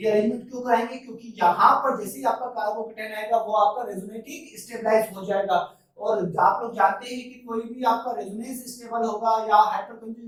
क्यों कराएंगे? क्योंकि यहाँ पर जैसे ही आपका कार्बोकेटायन आएगा वो आपका रेजोनेटिंग स्टेबलाइज हो जाएगा। और आप लोग जानते हैं कि कोई भी आपका रेजोनेंस स्टेबल होगा या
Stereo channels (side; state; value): both; identical; correlation 1.00